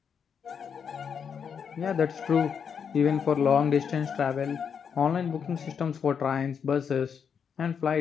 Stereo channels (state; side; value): quieter; right; 7.0 dB